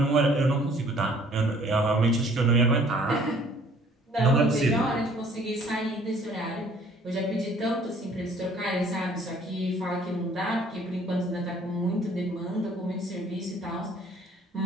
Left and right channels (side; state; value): both; normal; correlation 0.57